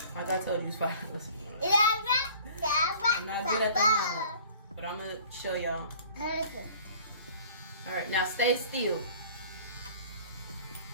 like I told you, it's $5. I'm not good at the lineup, but I'm gonna show y'all. Alright, now stay still.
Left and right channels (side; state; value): both; inverted; correlation -0.49